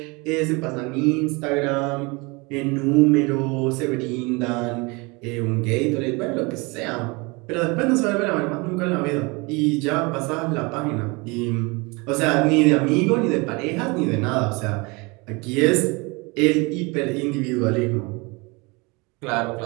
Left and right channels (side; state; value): left; quieter; 27.2 dB